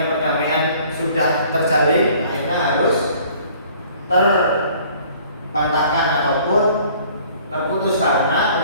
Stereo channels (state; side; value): inverted; both; correlation -0.54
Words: perdamaian sudah terjalin, akhirnya harus terbantahkan ataupun terputus karena